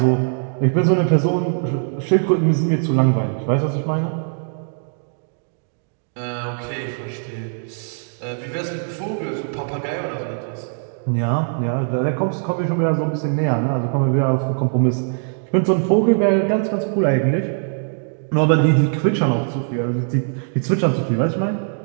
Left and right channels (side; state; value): left; silent; 60 dB below the other